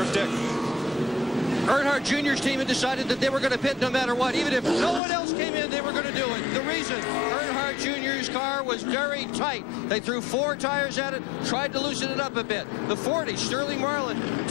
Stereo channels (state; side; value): drops out; right; at 5.0 s